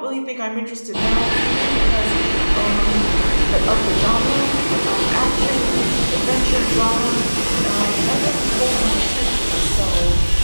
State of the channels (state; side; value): inverted; both; correlation -1.00